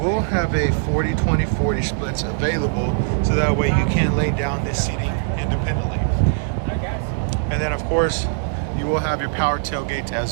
have a 40-20-40 splits available, so that way you can lay down this seating independently. And then of course, you will have your power tailgates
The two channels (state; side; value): silent; left; 65 dB below the other